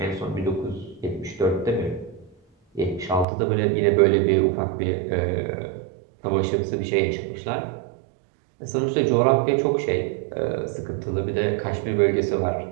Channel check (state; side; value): drops out; left; at 3.2 s